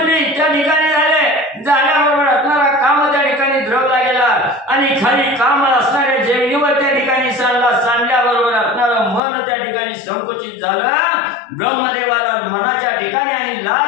त्या ठिकाणी झाल्याबरोबर असणारा काम त्या ठिकाणी द्रवला गेला आणि खाली काम असणाऱ्या जमिनीवर त्या ठिकाणी सांडल्याबरोबर असणारं मन त्या ठिकाणी संकुचित झालं। ब्रह्मदेवाला मनाच्या ठिकाणी आणि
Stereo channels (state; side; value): drops out; right; at 9.2 s